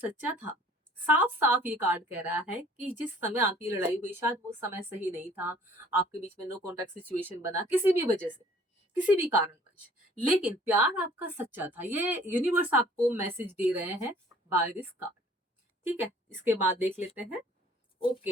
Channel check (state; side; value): normal; both; correlation 0.55